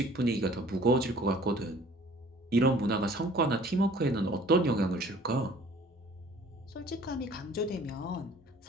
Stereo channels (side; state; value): both; normal; correlation 0.52